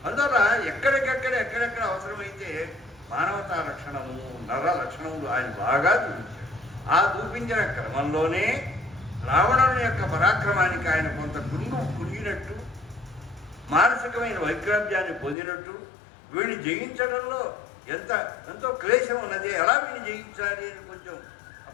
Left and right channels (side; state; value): right; drops out; at 15.4 s